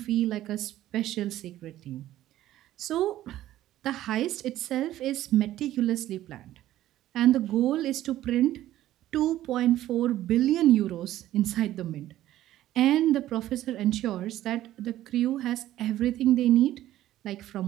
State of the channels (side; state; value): left; quieter; 13.8 dB